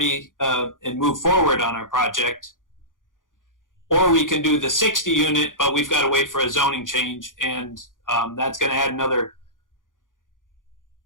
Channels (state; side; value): late; right; 0.89 ms